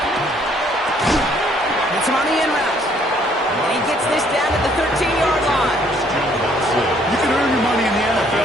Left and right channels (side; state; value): both; normal; correlation 0.64